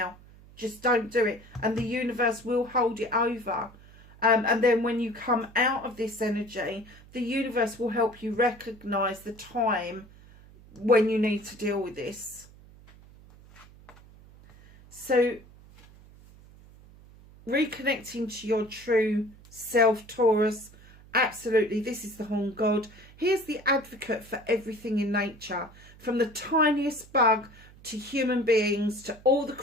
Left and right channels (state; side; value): noise; right; hum, 23 dB below the sound